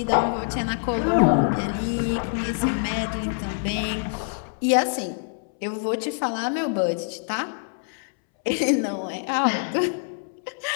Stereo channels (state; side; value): silent; right; 62 dB below the other